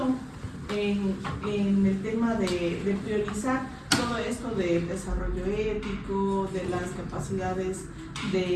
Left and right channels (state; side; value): identical; both; correlation 1.00